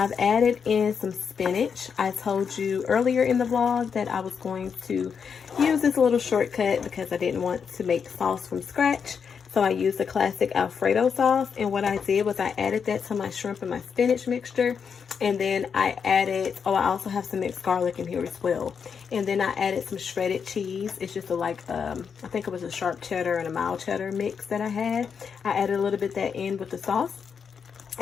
added in some spinach. I told you earlier in the vlog that I was going to use this little shortcut because I didn't want to make sauce from scratch. So I used the classic Alfredo sauce, and what I did was I added that to my shrimp and my spinach mixture, and then I added, oh, I also have some mixed garlic in here as well. And then I added some shredded cheese. It's just I think it was a sharp cheddar and a mild cheddar mix that I had. I added a little bit of that in with the sauce.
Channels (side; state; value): right; quieter; 6.5 dB